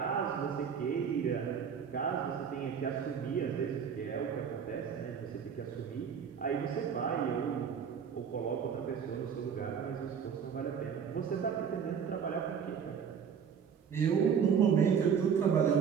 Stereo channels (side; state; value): left; quieter; 7.3 dB